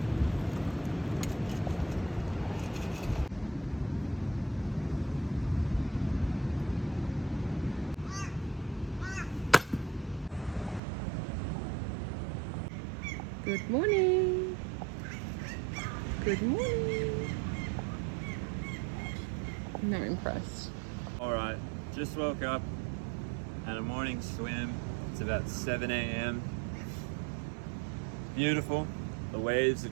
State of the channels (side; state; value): left; drops out; at 10.8 s